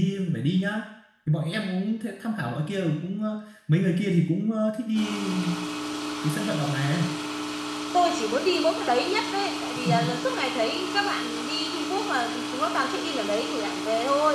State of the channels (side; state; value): both; identical; correlation 1.00